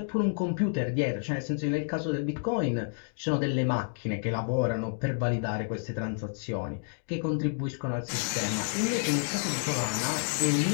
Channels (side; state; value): right; silent; digital silence